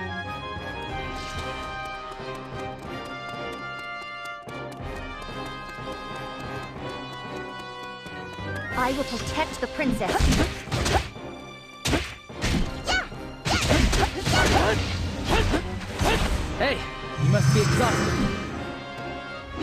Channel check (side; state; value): both; identical; correlation 1.00